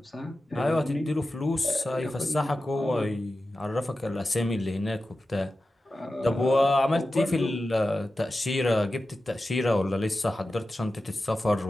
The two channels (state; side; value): normal; both; correlation 0.93